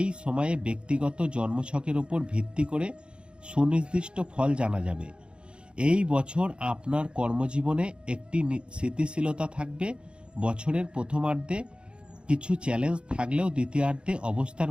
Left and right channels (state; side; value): late; left; 0.055 ms